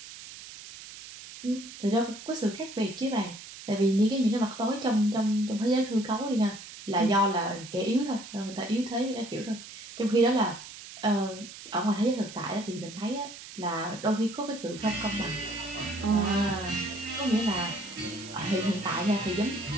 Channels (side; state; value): right; noise; hiss, 14 dB below the sound